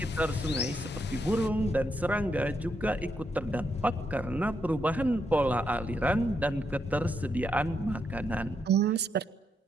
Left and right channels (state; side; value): normal; both; correlation 0.80